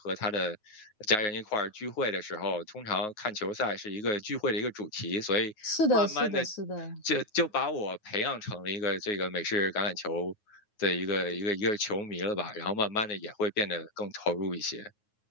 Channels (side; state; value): right; late; 9.4 ms